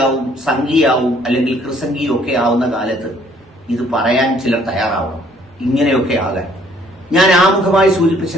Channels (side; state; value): both; normal; correlation 0.62